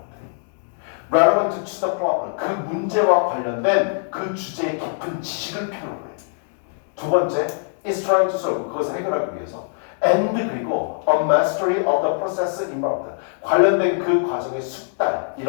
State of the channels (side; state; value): right; silent; digital silence